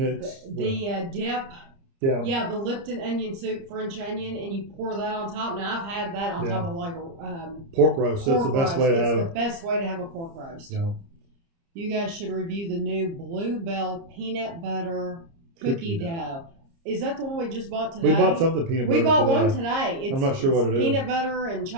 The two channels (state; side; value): late; left; 30 ms